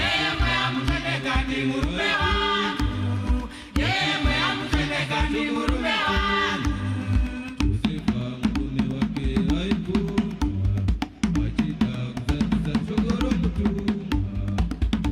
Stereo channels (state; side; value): identical; both; correlation 1.00